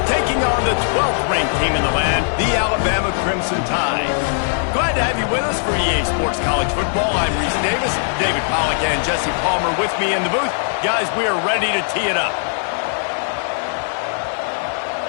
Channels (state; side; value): silent; right; 66 dB below the other